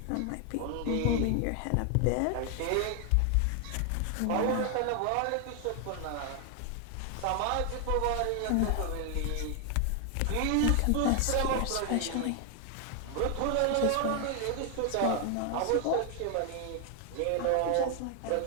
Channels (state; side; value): different; both; correlation 0.00